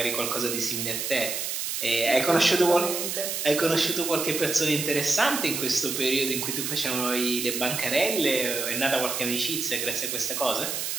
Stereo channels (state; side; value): noise; right; hiss, 3 dB below the sound